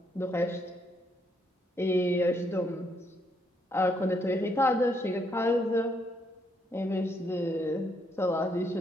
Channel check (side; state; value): both; normal; correlation 0.74